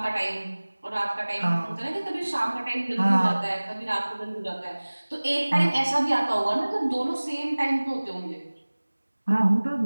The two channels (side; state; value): both; inverted; correlation -1.00